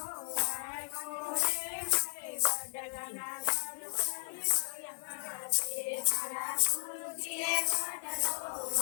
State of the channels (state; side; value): silent; right; digital silence